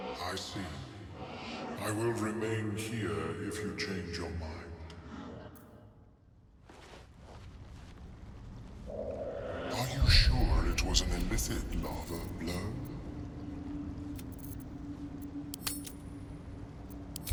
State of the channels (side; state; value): both; identical; correlation 1.00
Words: I see. I will remain here if you change your mind. Are you sure it was an illithid larva, Blur?